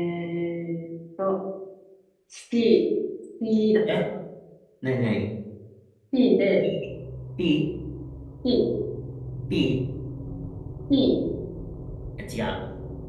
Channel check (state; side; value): identical; both; correlation 1.00